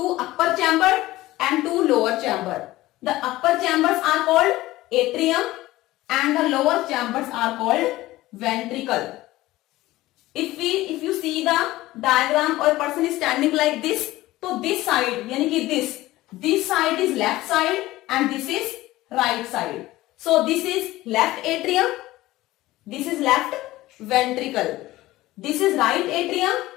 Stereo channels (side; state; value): right; quieter; 17.3 dB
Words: upper chamber and 2 lower chamber. The upper chambers are called atrium and the lower chambers are called ventricle. If you see the diagram, or a person is standing like this, so this side, यानी कि this side is left side and this is right side. So this is left atrium, this is left ventricle, this is right atrium,